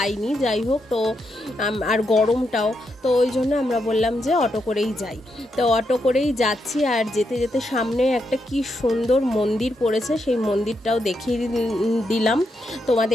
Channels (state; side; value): normal; both; correlation 0.82